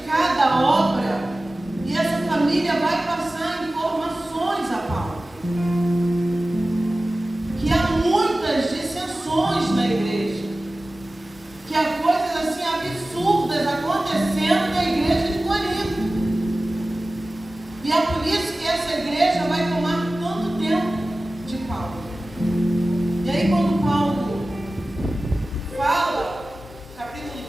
à obra, e essa família vai passar informações a Paulo. Que há muitas dissensões na igreja, que há coisas assim absurdas acontecendo na igreja de Corinto. E é por isso que essa igreja vai tomar tanto tempo de Paulo. E aí quando Paulo fala, capítulo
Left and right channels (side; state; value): both; normal; correlation 0.96